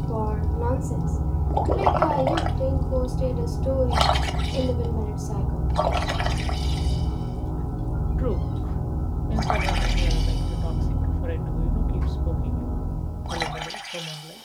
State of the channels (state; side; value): identical; both; correlation 1.00